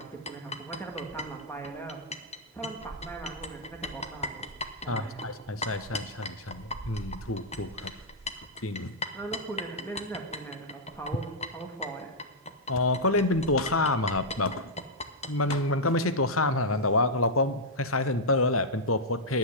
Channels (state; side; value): normal; both; correlation -0.07